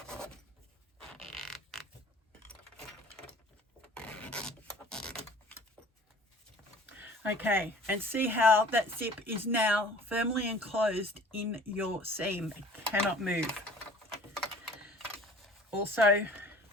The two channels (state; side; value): normal; both; correlation 0.48